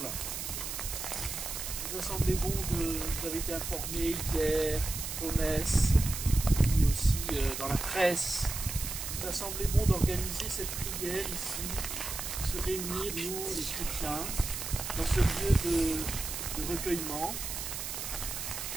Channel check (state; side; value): noise; right; hiss, 5 dB below the sound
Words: Il nous a semblé bon vous avez été informés hier aux messes, puis aussi dans la presse. Il nous a semblé bon d'organiser cette prière ici, de se réunir, nous, les chrétiens, dans ce lieu de recueillement,